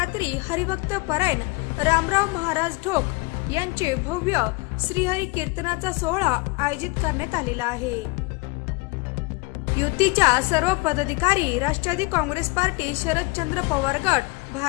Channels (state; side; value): quieter; right; 26.1 dB